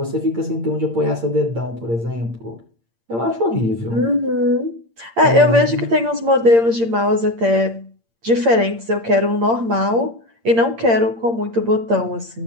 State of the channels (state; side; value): late; left; 8.7 ms